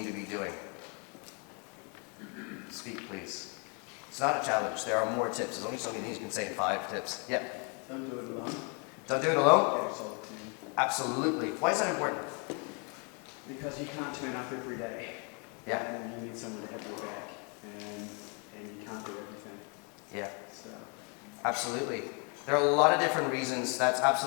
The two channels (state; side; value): quieter; right; 35.7 dB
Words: to be doing? Speak, please. It's not a challenge. There are more tips. There's only so many things you can say in 5 tips. Yeah? Don't do it alone. Don't do it alone? Get yourself a team. Absolutely. Why is that important? Because you can't turn up every day. Yeah. And you need someone to have your back. And you can't do everything. Yeah. So. Absolutely. There are a lot of different reasons. That's